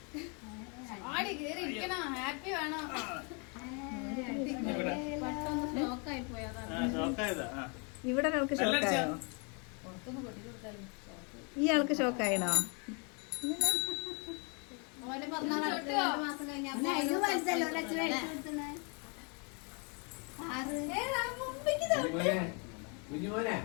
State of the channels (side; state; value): right; quieter; 34.9 dB